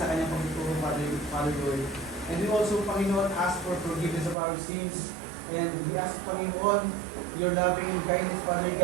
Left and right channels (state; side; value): drops out; left; at 4.4 s